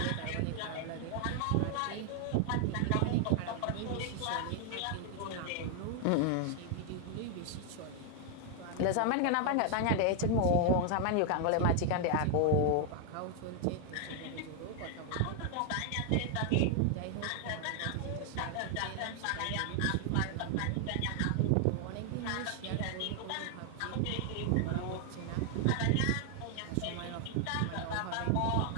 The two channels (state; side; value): different; both; correlation 0.00